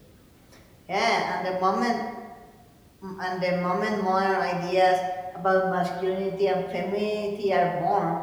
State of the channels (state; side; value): identical; both; correlation 1.00